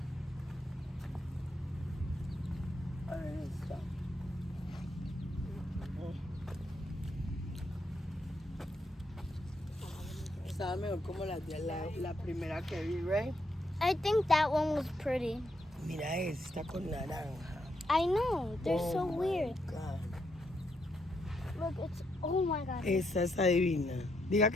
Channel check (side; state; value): both; normal; correlation 0.78